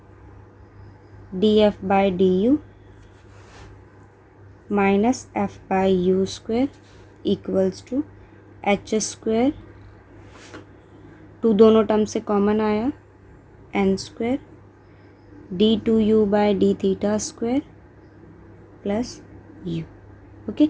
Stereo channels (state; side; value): identical; both; correlation 1.00